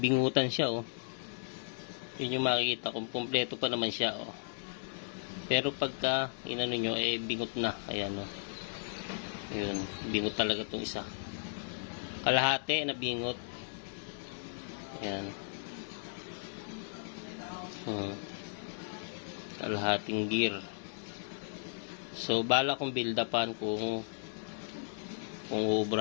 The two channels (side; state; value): right; silent; digital silence